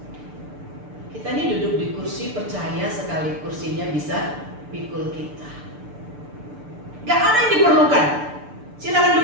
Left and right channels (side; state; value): left; late; 6.8 ms